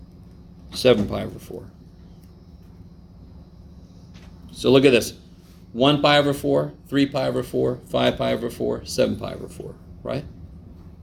7 pi over 4. So look at this. 1 pi over 4, 3 pi over 4, 5 pi over 4, 7 pi over 4, right?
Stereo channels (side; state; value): both; identical; correlation 1.00